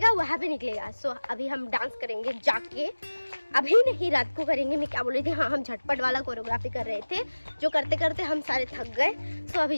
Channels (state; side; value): inverted; both; correlation -1.00